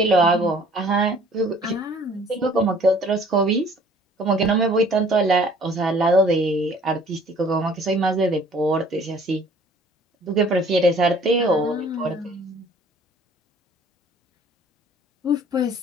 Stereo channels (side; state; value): both; normal; correlation 0.54